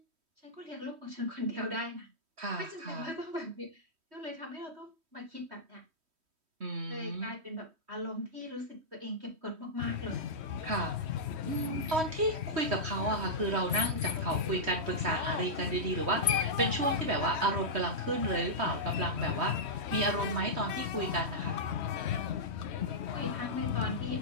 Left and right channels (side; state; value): left; late; 3.1 ms